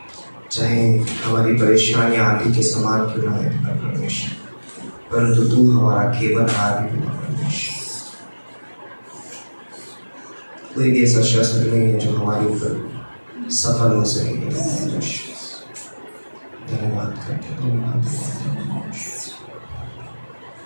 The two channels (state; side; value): inverted; both; correlation -1.00